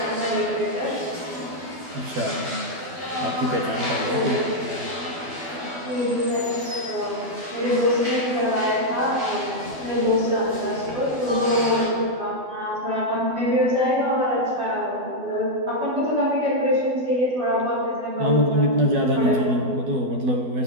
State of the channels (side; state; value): left; late; 12 ms